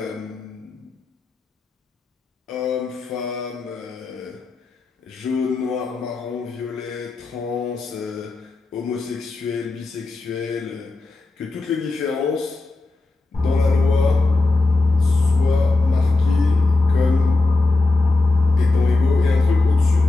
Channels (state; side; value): quieter; right; 3.3 dB